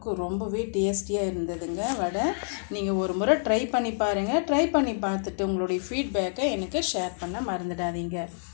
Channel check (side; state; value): right; silent; digital silence